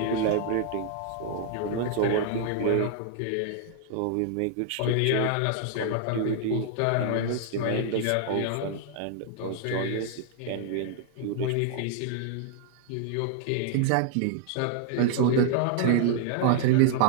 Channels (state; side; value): different; both; correlation 0.00